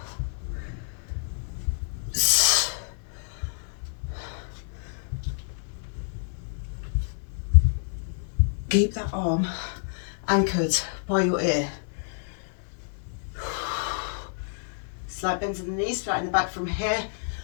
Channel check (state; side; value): silent; right; 59 dB below the other